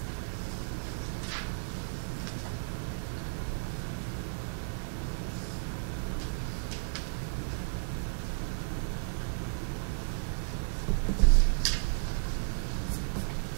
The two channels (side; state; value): left; silent; digital silence